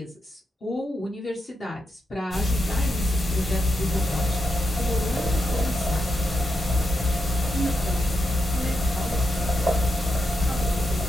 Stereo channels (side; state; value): both; normal; correlation 0.85